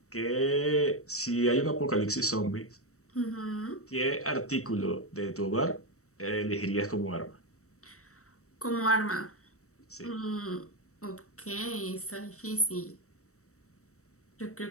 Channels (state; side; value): late; right; 0.65 ms